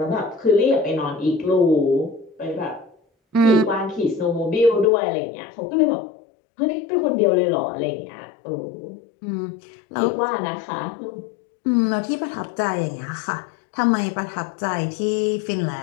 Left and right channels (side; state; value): right; drops out; at 4.9 s